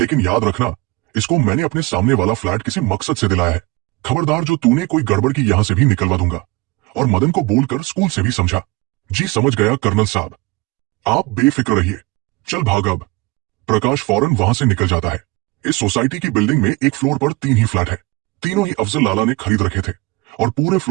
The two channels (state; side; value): quieter; left; 23.6 dB